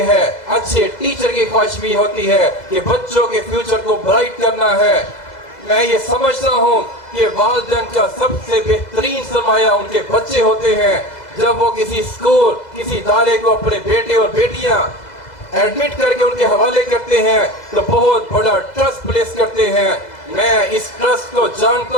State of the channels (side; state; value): right; late; 2.0 ms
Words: ہے, اچھے ٹیچر کی خواہش بھی ہوتی ہے کہ بچوں کے فیوچر کو برائٹ کرنا ہے. میں یہ سمجھتا ہوں کہ والدین کا سب سے بہترین سرمایہ ان کے بچے ہوتے ہیں. جب وہ کسی اسکول, کسی ادارے کو اپنے بیٹے اور بیٹیاں ایڈمٹ کر کے ان کے حوالے کرتے ہیں تو بہت بڑا ٹرسٹ پلیس کرتے ہیں. میں اس ٹرسٹ کو